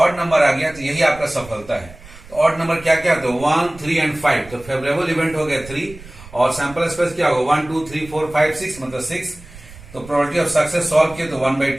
नंबर आ गया तो यही आपका सफलता है। तो ऑड नंबर क्या क्या होता है? 1, 3 एंड 5, तो फेवरेबल इवेंट हो गया 3, और सैंपल स्पेस क्या होगा? 1, 2, 3, 4, 5, 6 मतलब 6। तो प्रोबेबिलिटी ऑफ सक्सेस सॉल्व किया तो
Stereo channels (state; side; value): noise; right; rumble, 19 dB below the sound